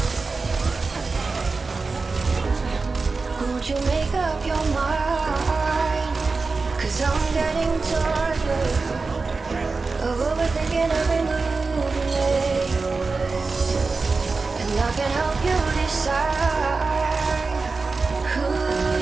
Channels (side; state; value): left; quieter; 4.1 dB